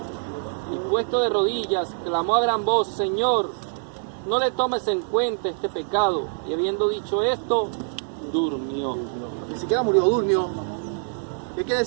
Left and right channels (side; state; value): left; silent; digital silence